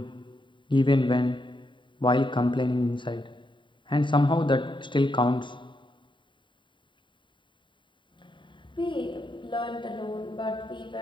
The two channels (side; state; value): right; late; 0.23 ms